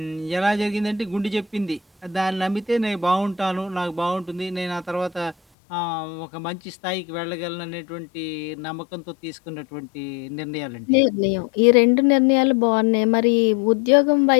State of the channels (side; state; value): right; drops out; at 5.4 s